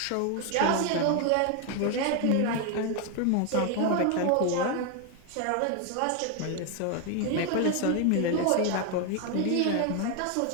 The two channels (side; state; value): both; different; correlation 0.01